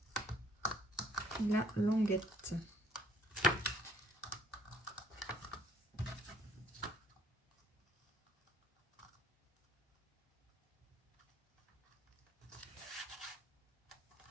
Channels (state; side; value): normal; both; correlation 0.63